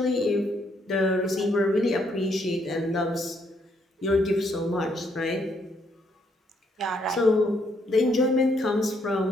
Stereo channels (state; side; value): normal; both; correlation 0.72